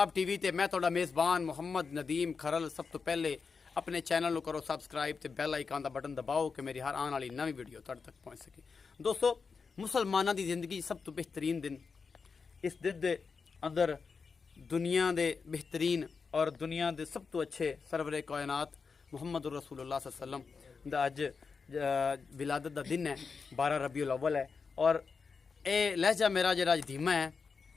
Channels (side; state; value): right; quieter; 5.1 dB